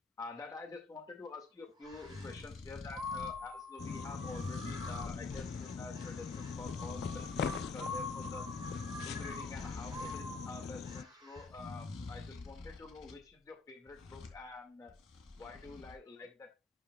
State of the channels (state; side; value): quieter; right; 4.0 dB